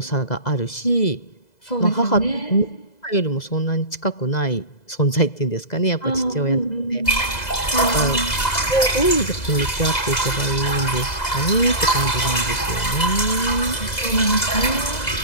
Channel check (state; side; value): late; right; 2.0 ms